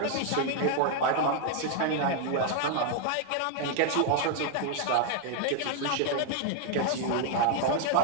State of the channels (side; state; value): both; different; correlation 0.00